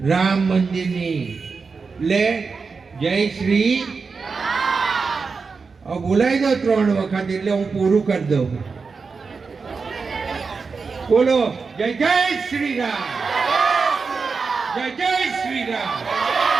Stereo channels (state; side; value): quieter; left; 4.8 dB